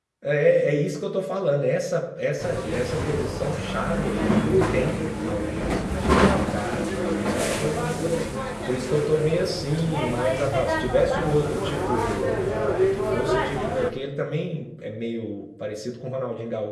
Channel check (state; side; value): identical; both; correlation 1.00